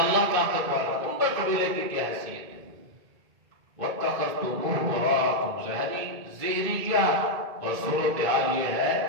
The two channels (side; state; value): left; late; 2.2 ms